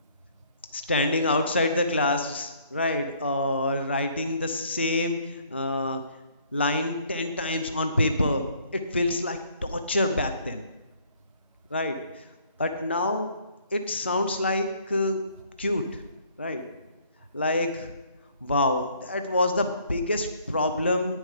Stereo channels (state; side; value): inverted; both; correlation -0.61